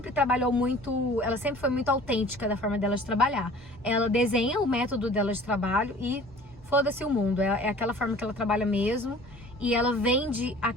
trabalhou muito, ela sempre foi muito autêntica da forma dela de trabalhar. Ela desenha o método dela de trabalho e foda-se o mundo, é aquela forma que ela trabalha mesmo. E ela vende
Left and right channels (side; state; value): both; normal; correlation 0.47